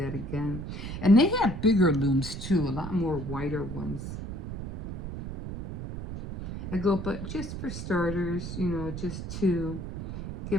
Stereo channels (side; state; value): right; noise; rumble, 7 dB below the sound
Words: again. And they have bigger looms too, a lot more wider ones. I go, but just for starters, you know, just to